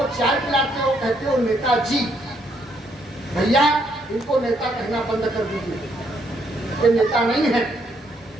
चाय पिलाते हो, कहते हो नेताजी। भैया इनको नेता कहना बंद कर दीजिए, ये नेता नहीं है,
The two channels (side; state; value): both; normal; correlation 0.72